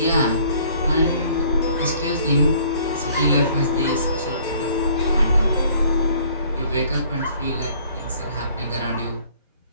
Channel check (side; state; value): both; inverted; correlation -0.57